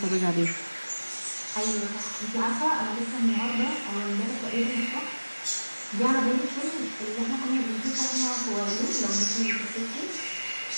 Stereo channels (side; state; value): both; inverted; correlation -1.00